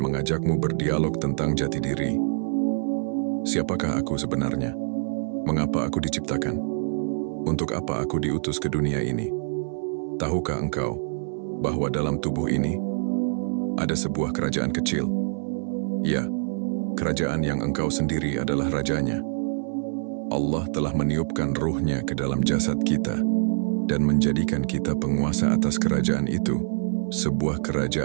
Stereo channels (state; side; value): silent; left; digital silence